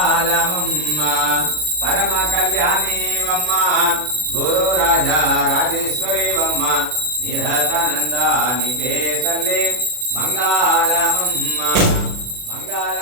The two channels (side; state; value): left; late; 40 ms